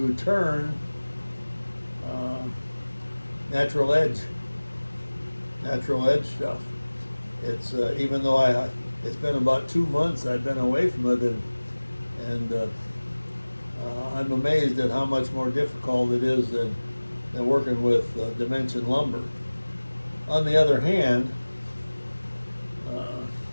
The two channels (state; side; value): inverted; both; correlation -1.00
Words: turn natural edge stuff. It's even though it's been about 2 months I've been away from it, and I'm amazed at how much more difficult it is than working with dimension lumber. On the other hand,